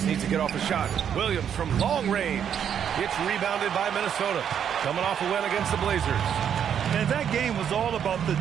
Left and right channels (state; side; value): quieter; left; 8.6 dB